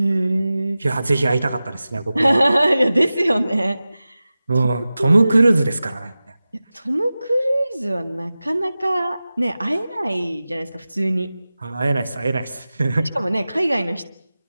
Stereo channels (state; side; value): inverted; both; correlation -0.95